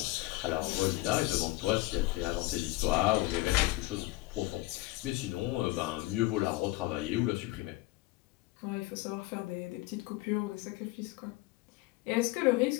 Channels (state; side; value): quieter; right; 19.6 dB